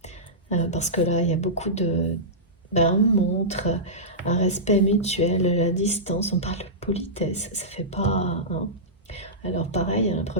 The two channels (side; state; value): both; normal; correlation -0.15